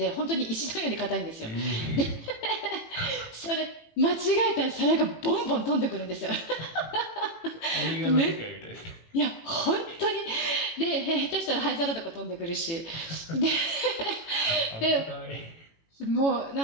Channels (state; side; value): late; right; 18 ms